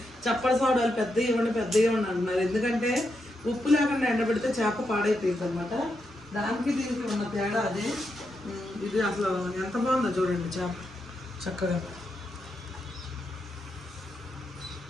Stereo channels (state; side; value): normal; both; correlation 0.84